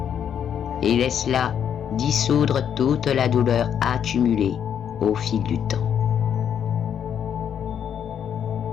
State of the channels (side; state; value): right; quieter; 8.6 dB